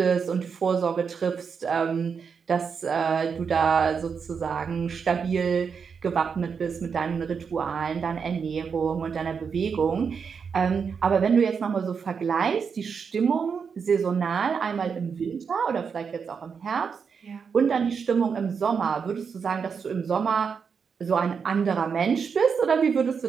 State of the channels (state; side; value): quieter; left; 6.1 dB